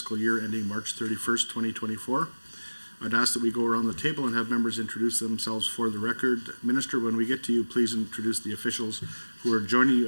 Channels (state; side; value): inverted; both; correlation -1.00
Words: year ending March 31st, 2024. I'd ask that we go around the table and have members introduce themselves for the record. Minister, when we get to you, please introduce the officials who are joining